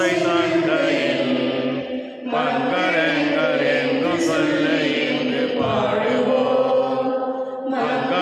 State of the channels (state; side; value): identical; both; correlation 1.00